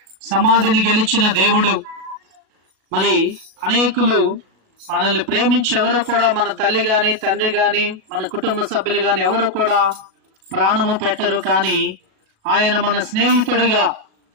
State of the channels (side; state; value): left; late; 36 ms